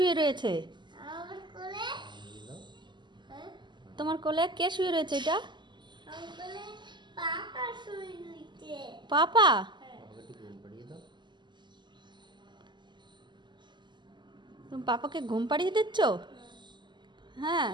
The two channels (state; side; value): late; left; 0.22 ms